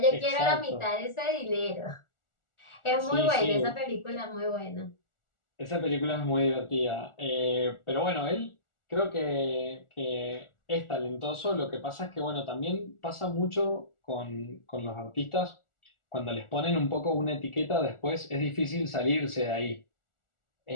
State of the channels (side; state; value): right; late; 1.4 ms